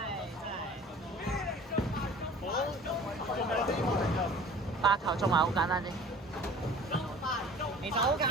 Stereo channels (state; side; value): normal; both; correlation 0.45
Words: 真係。 8球中埋好簡單啫。其實好簡